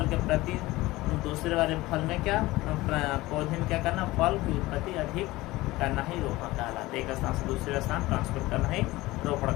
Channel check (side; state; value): right; quieter; 19.1 dB